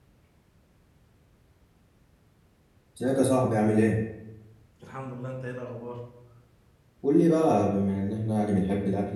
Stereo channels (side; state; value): both; identical; correlation 1.00